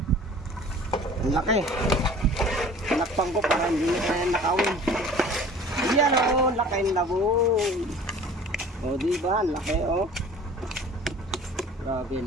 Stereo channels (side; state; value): both; normal; correlation 0.46